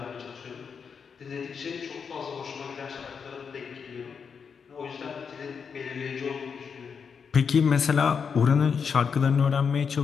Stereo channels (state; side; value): quieter; right; 6.3 dB